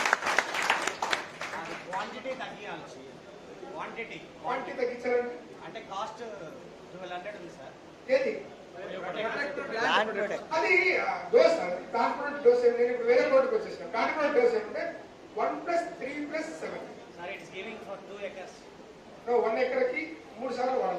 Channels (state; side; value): identical; both; correlation 1.00